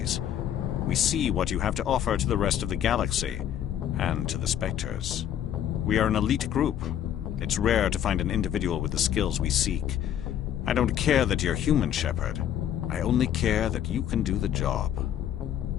We see what you have to offer to the rest of the galaxy, and to the Spectres. We are an elite group. It's rare to find an individual with the skills we seek. I don't care that you're human, Shepard. I only care that you can do the job.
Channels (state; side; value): quieter; right; 10.3 dB